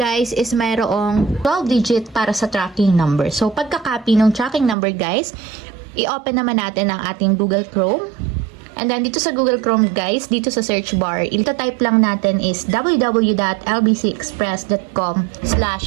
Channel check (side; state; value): left; drops out; at 4.8 s